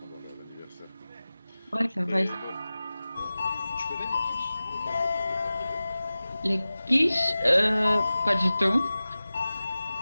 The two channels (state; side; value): inverted; both; correlation -0.97